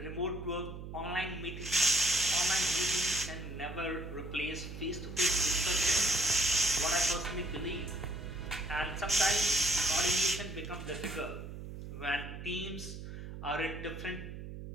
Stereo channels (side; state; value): right; noise; hum, 10 dB below the sound